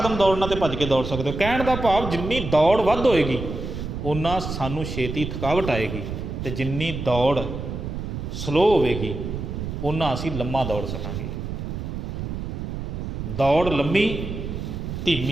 ਦੌੜਨਾ ਤਾਂ ਭੱਜ ਕੇ ਦੌੜ ਸਕਦੇ ਹੋ। ਕਹਿਣ ਦਾ ਭਾਵ ਜਿੰਨੀ ਦੌੜ ਵੱਧ ਹੋਏਗੀ ਓਨਾ ਸਾਨੂੰ ਛੇਤੀ ਥਕਾਵਟ ਆਏਗੀ, ਅਤੇ ਜਿੰਨੀ ਦੌੜ ਸਲੋ ਹੋਵੇਗੀ ਓਨਾ ਅਸੀਂ ਲੰਮਾ ਦੌੜ ਸਕਾਂਗੇ। ਦੌੜ ਲੰਮੀ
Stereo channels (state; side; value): noise; right; rumble, 5 dB below the sound